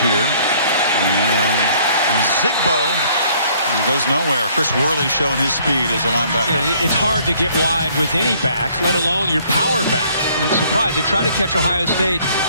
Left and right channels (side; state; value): both; inverted; correlation -0.61